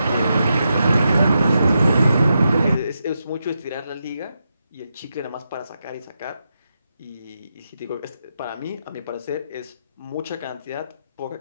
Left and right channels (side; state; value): both; inverted; correlation -0.85